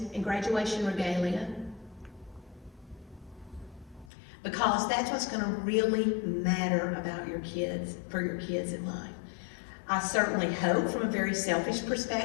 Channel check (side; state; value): right; drops out; at 4.1 s